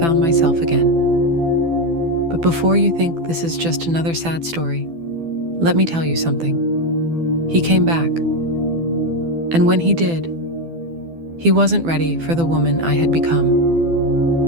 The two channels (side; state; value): left; late; 12 ms